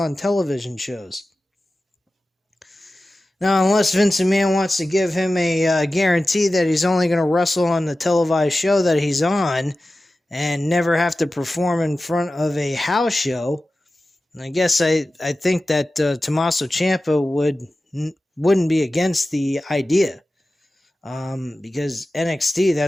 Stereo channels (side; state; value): both; normal; correlation 0.95